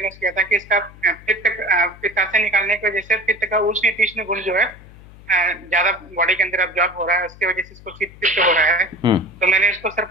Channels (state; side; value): noise; left; hum, 21 dB below the sound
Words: किया था कि इसका पित्ताशय निकालने की वजह से पित्त का उष्ण तीक्ष्ण गुण जो है ज्यादा बॉडी के अंदर अब्जॉर्ब हो रहा है, उसकी वजह से इसको पित्त हो रहा है। तो मैंने इसको सर